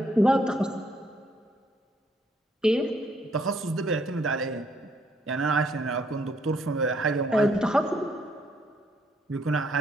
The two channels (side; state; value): both; normal; correlation 0.69